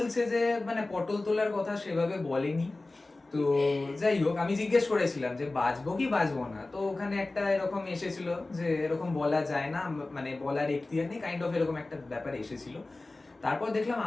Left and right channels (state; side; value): quieter; right; 3.1 dB